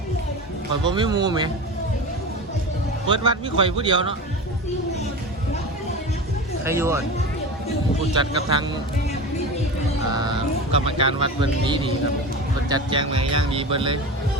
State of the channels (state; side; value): normal; both; correlation 0.29